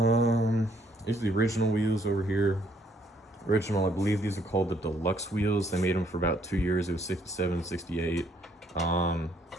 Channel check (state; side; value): normal; both; correlation 0.67